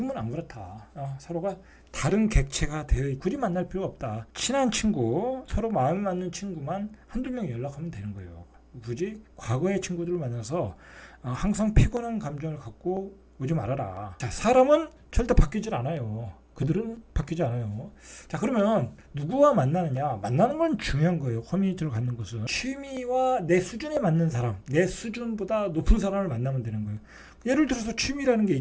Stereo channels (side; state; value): both; identical; correlation 1.00